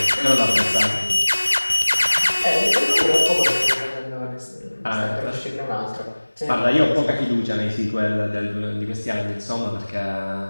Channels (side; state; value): both; inverted; correlation -1.00